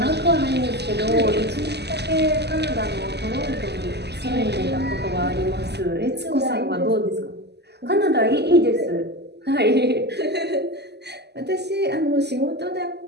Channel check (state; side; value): late; left; 0.49 ms